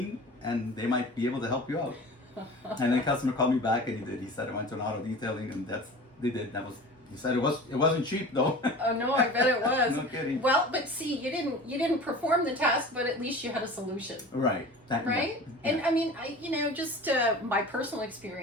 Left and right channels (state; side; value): normal; both; correlation 0.38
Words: and they might be able to help you out. And then the customer called me back, and he did. He said, I went to an auto detailing, and they did. He said it wasn't cheap though. Oh no, I bet it was. No kidding. Well, but see, you didn't perform the task, but at least you had a solution. Right. Right? Yeah. And I mean, just my personal